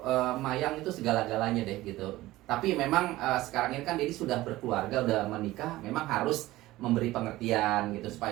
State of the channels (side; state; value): left; quieter; 17.3 dB